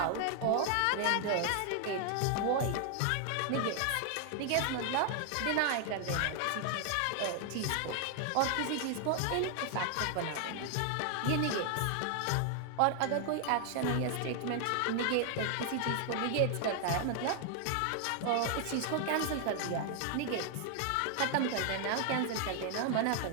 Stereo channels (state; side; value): different; both; correlation 0.00